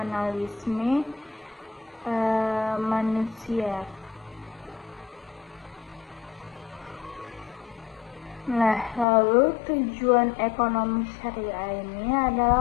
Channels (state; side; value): drops out; right; at 9.1 s